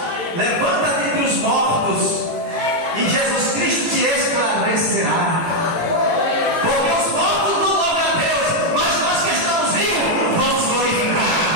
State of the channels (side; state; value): left; late; 18 ms